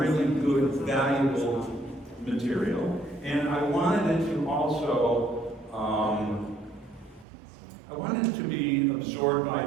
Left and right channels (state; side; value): drops out; left; at 7.2 s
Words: good, valuable material. And I wanted it to also, I wanted it to be absorbed by